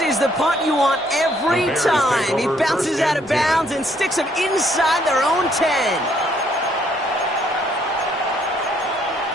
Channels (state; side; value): normal; both; correlation 0.67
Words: is the punt you want every time. He bounces out of bounds and sticks them inside their own 10.